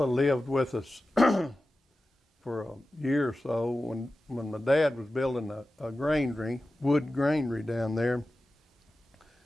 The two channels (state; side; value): normal; both; correlation 0.94